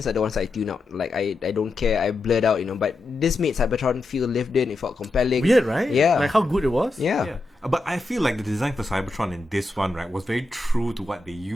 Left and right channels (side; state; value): right; quieter; 3.0 dB